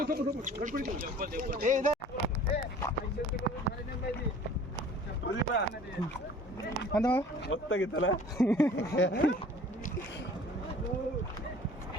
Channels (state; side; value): normal; both; correlation 0.48